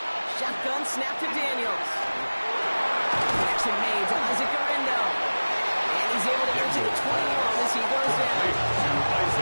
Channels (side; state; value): both; inverted; correlation -1.00